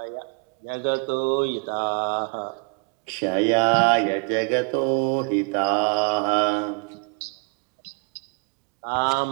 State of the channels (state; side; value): quieter; left; 35.2 dB